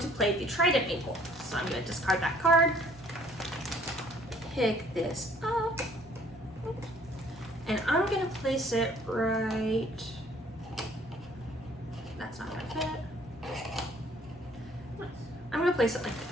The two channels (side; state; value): both; normal; correlation 0.58